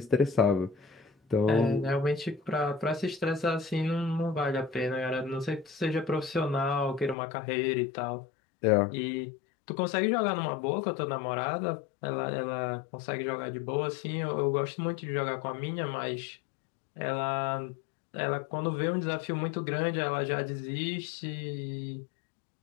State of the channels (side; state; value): right; drops out; at 7.2 s